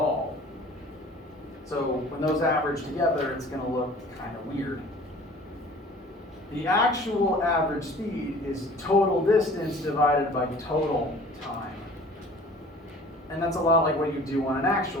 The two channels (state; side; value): normal; both; correlation 0.47